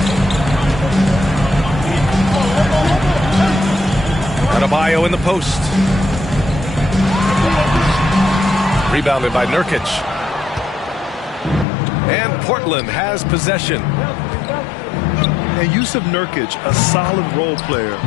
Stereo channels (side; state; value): right; drops out; at 11.7 s